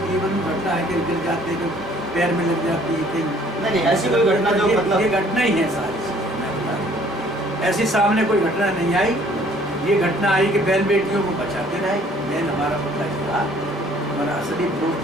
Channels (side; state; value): both; normal; correlation 0.58